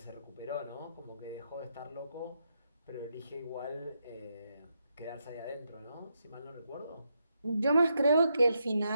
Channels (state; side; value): inverted; both; correlation -0.81